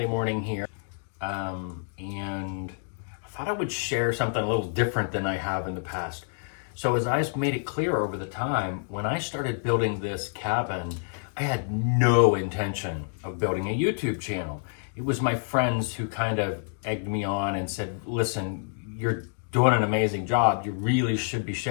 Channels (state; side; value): silent; right; digital silence